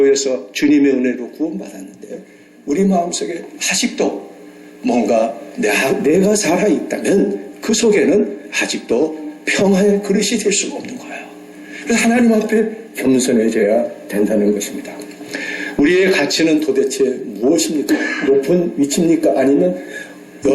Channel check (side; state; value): both; identical; correlation 1.00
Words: 주님의 은혜로 구원받았는데 우리 마음속에 아직도 뭔가 내가 살아있다면 그 속에는 아직도 평화의 그릇이 될 수가 없는 거예요. 그래서 하나님 앞에 겸손해져야 된다는 것입니다. 우리의 가치는 도대체 무엇입니까? 높은 위치입니까? 아니면